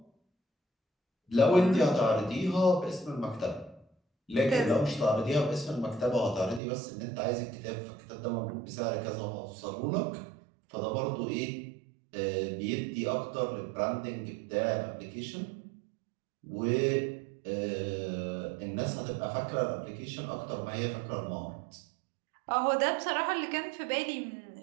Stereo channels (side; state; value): left; drops out; at 6.6 s